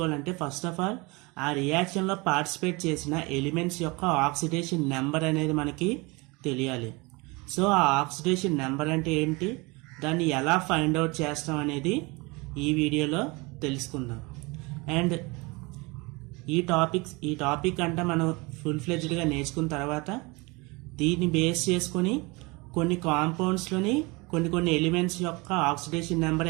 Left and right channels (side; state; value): left; quieter; 26.0 dB